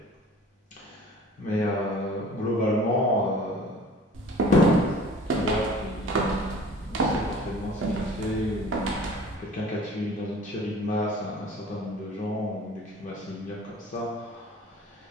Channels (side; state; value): both; normal; correlation 0.46